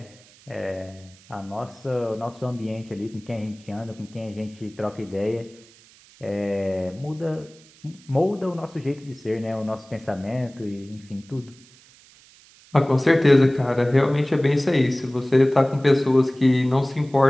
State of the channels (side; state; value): right; noise; hiss, 26 dB below the sound